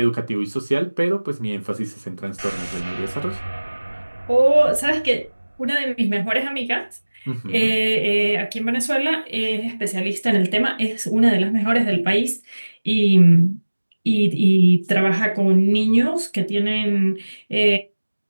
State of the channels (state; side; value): inverted; both; correlation -1.00